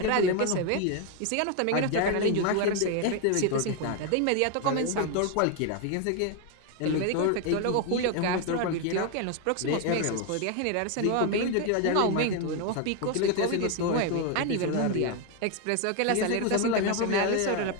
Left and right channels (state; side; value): different; both; correlation 0.01